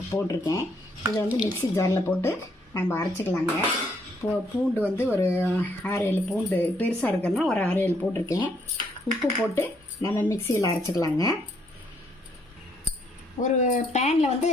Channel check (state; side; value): normal; both; correlation 0.70